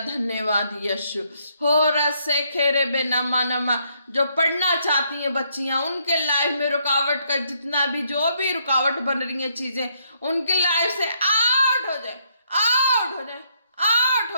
यीशु। हो रसे खेरे बे नमा नमा। जो पढ़ना चाहती हैं बच्चियां, उनके लाइफ में रुकावट का जितना भी जो भी रुकावट बन रही है चीजें, उनकी लाइफ से आउट हो जाए, आउट हो जाए, आउट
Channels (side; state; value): both; inverted; correlation -0.72